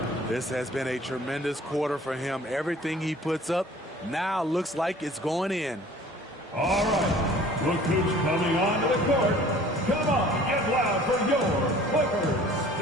This has been a tremendous quarter for him. Everything he puts up now looks like it's going in. All right. Look who's coming onto the court. Come on, get loud for your Clippers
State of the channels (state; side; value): normal; both; correlation 0.50